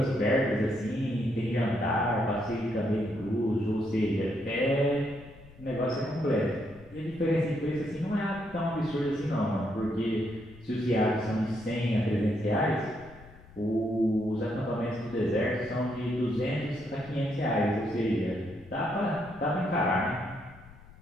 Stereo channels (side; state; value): left; noise; rumble, 21 dB below the sound